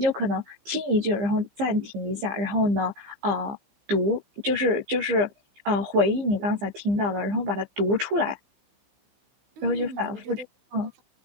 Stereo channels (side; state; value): left; late; 15 ms